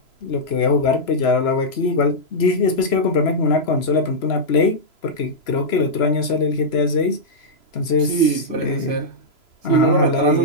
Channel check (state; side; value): late; right; 3.0 ms